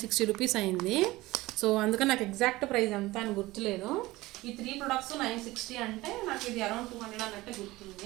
రూపీస్ అయింది. సో అందుకని నాకు ఎగ్జాక్ట్ ప్రైస్ ఎంత అని గుర్తులేదు. ఈ 3 ప్రొడక్ట్స్ 960 అంటే నాకు ఇది అరౌండ్ 200 అన్నట్టే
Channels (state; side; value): quieter; left; 19.1 dB